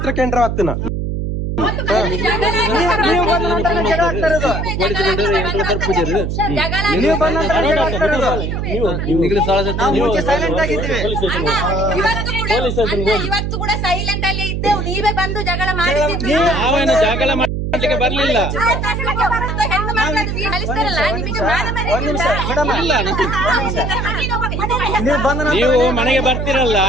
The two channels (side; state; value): right; noise; hum, 2 dB below the sound